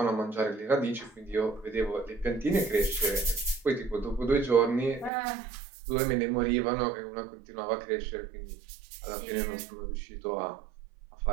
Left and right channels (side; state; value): left; drops out; at 5.1 s